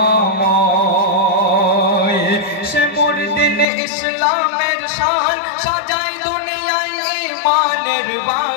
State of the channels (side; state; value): right; drops out; at 3.7 s